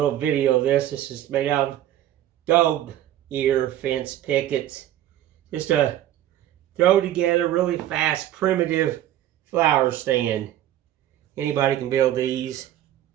video of this. This is made out of dog ear fence pickets. Just a throw together really fast, primitive flower stand. Anybody can build these.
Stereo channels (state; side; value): quieter; left; 12.6 dB